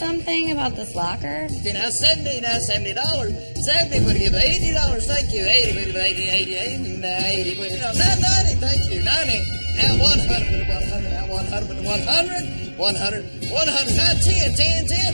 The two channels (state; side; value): inverted; both; correlation -1.00